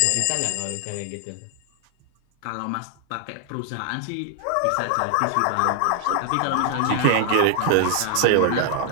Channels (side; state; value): both; different; correlation 0.00